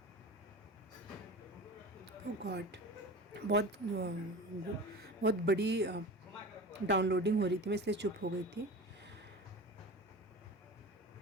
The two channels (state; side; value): normal; both; correlation 0.34